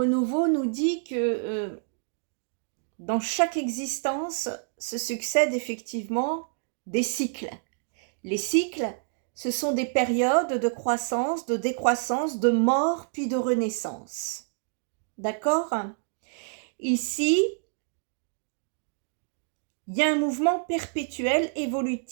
nous dit que dans chaque existence se succèdent effectivement des cycles. Les cycles, ce sont des périodes de croissance, de décroissance, de mort, puis de renaissance. D'accord? Ici, il y a un mouvement perpétuel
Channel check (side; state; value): left; silent; digital silence